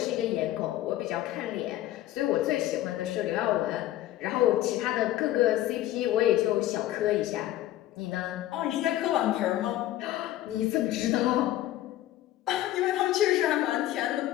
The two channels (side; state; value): right; quieter; 14.1 dB